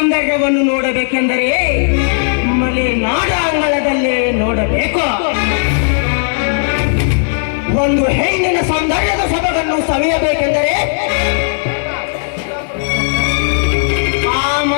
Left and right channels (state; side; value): silent; right; digital silence